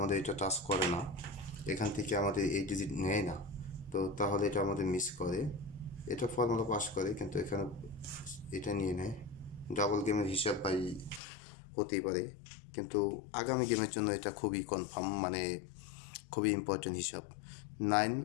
এটা টাচ করে না এখান থেকে আমাদের এই ডিজিট নেয় না তো তাহলে এটা আমাদের মিস করে এটা ফর্মুলা পাস করে কিন্তু এখানে এটা নিয়ে নেয় ডাবল গেমের হিসাব পাই হতেই পারে কিন্তু আগামী গেমের জন্য এটা খুবই কনফার্ম মানে খুবই ইম্পর্টেন্ট হিসাব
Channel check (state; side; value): drops out; right; at 11.2 s